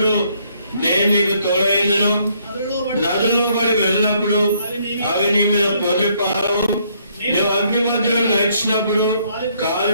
నేను నీకు తోడైందును, నదుల్లో పడి వెళ్ళినప్పుడు అవి నీ మీద పొర్లిపారవు. నువ్వు అగ్ని మధ్యలో నడిచినప్పుడు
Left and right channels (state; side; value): inverted; both; correlation -0.68